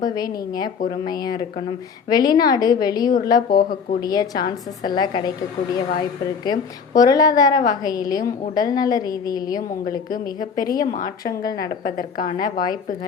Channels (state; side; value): quieter; right; 6.0 dB